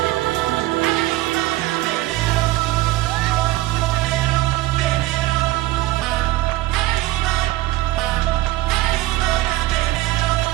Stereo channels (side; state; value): left; quieter; 17.6 dB